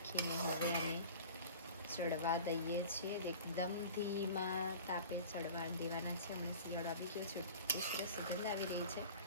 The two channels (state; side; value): inverted; both; correlation -0.40